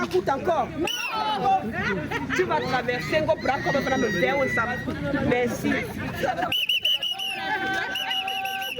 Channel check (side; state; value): both; identical; correlation 1.00